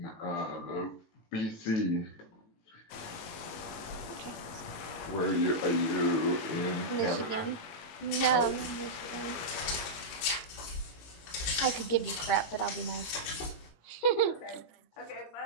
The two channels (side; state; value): right; late; 19 ms